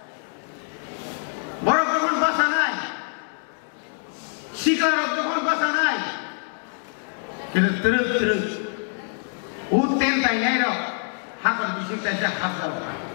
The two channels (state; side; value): silent; right; 56 dB below the other